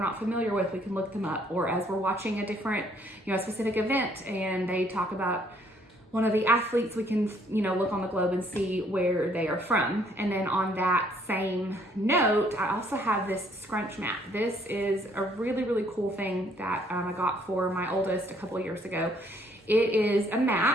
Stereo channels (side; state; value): both; normal; correlation 0.65